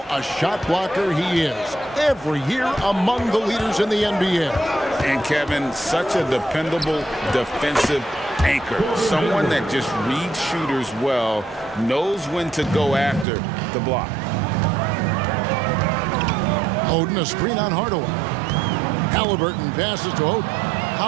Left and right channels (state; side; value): drops out; left; at 13.2 s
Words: a shot blocker he is. Every year among the leaders in the NBA. And Kevin, such a dependable defensive anchor. Someone that just reads shooters well, knows when to go after the block. Oden, a screen on Hardaway. Halliburton passes to Oden.